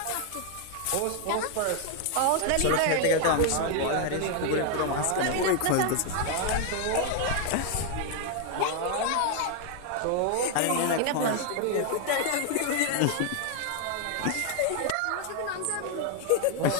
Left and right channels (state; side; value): different; both; correlation 0.00